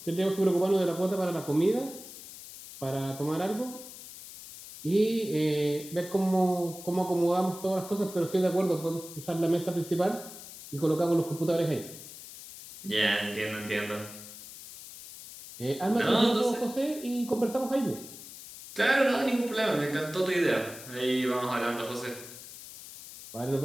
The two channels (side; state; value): left; noise; hiss, 14 dB below the sound